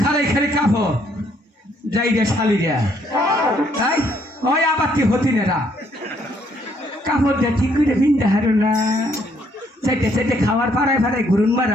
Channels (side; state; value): both; normal; correlation 0.69